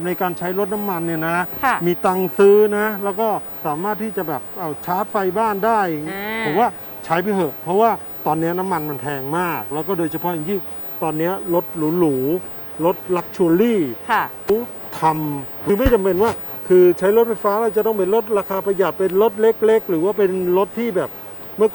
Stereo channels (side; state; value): both; identical; correlation 1.00